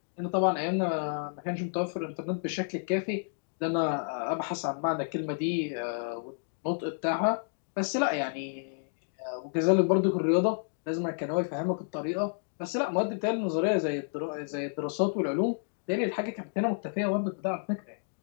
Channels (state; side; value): silent; right; digital silence